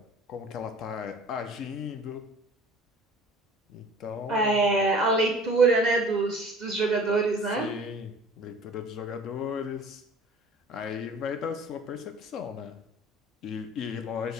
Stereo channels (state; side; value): normal; both; correlation 0.46